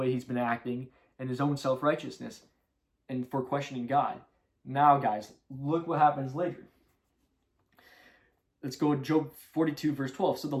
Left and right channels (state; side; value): identical; both; correlation 1.00